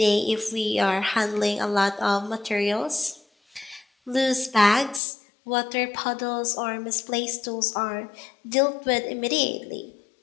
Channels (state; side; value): drops out; right; at 5.0 s